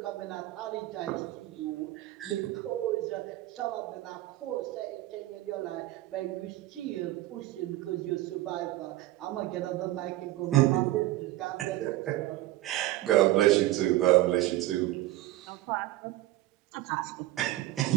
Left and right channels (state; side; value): quieter; left; 16.3 dB